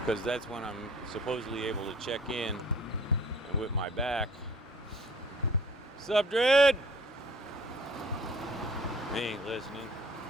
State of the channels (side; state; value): both; normal; correlation 0.52